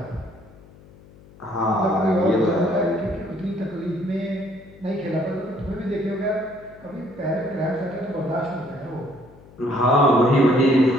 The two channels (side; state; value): left; noise; hum, 23 dB below the sound